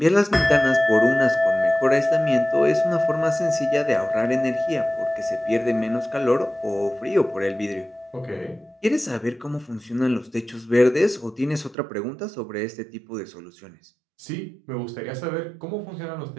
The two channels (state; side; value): drops out; left; at 11.8 s